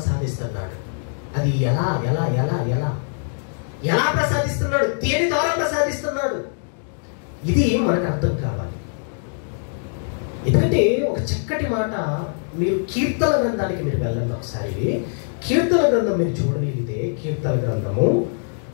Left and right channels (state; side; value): silent; right; digital silence